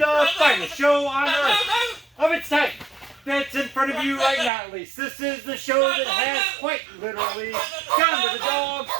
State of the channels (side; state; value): left; drops out; at 4.5 s